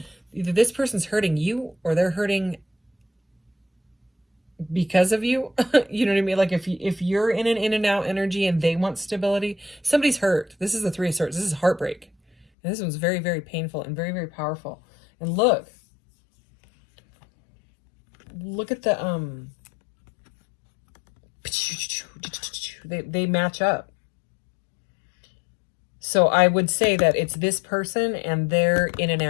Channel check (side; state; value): right; drops out; at 12.5 s